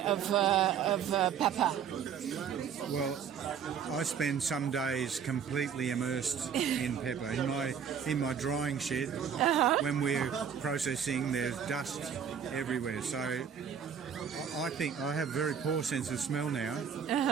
of pepper? Well, I spend some days completely immersed in pepper. In my drying shed, when we're processing, there's dust everywhere. So I think I have a very poor sense of smell now,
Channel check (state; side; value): quieter; left; 7.6 dB